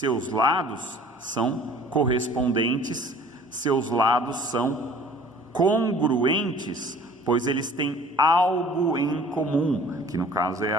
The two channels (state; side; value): normal; both; correlation 0.49